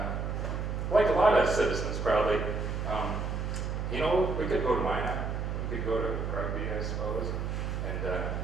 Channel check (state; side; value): noise; right; hum, 2 dB below the sound